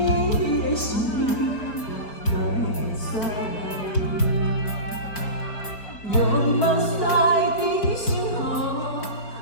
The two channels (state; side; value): late; right; 4.4 ms